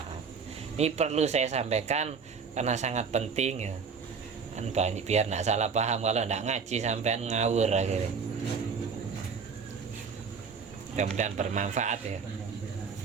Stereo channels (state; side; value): quieter; left; 5.7 dB